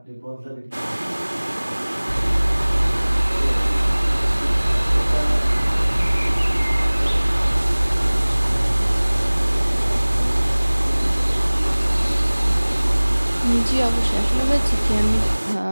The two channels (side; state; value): both; inverted; correlation -1.00